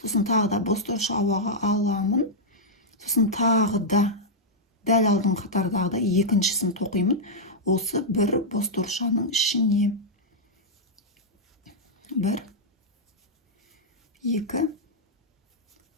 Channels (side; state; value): both; normal; correlation -0.06